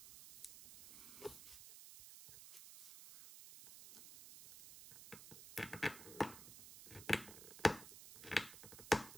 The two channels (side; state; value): right; noise; hiss, 14 dB below the sound